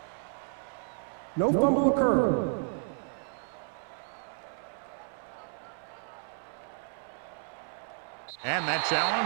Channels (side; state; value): left; silent; 56 dB below the other